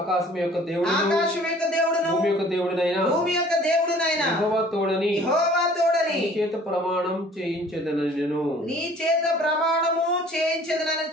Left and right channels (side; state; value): both; normal; correlation 0.52